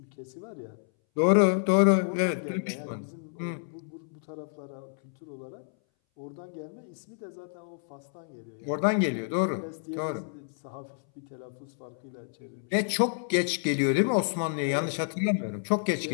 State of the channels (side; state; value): right; silent; 58 dB below the other